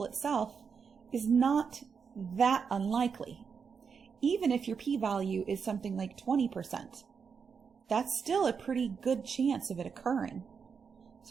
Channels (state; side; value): quieter; left; 6.1 dB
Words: itself is not that unlikely. Even if your p-value is something like 20%, that's still a pretty good chance of it occurring.